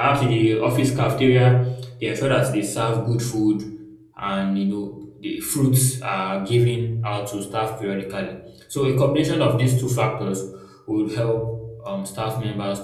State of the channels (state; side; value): identical; both; correlation 1.00